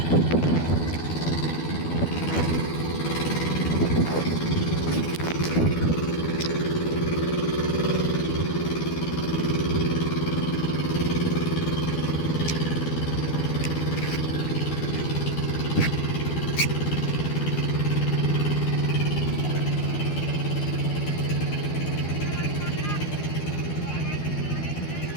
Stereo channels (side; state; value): right; late; 12 ms